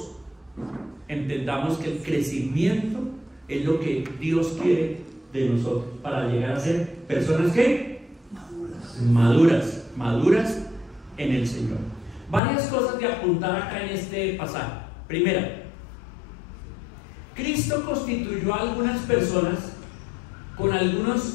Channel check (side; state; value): right; drops out; at 12.4 s